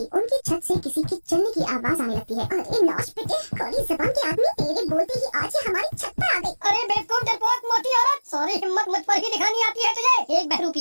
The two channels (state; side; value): inverted; both; correlation -1.00